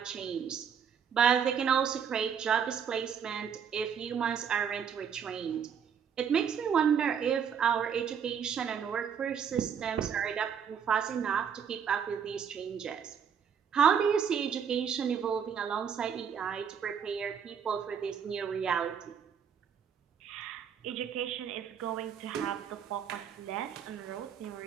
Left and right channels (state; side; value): quieter; left; 7.5 dB